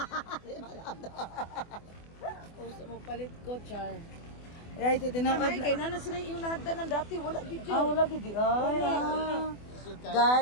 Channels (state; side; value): late; right; 24 ms